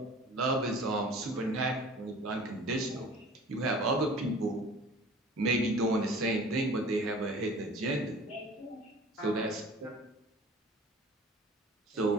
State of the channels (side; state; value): both; normal; correlation 0.45